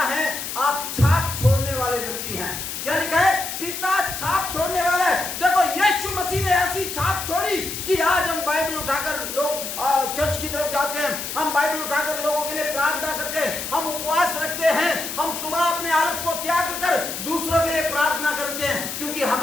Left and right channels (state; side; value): noise; left; hiss, 6 dB below the sound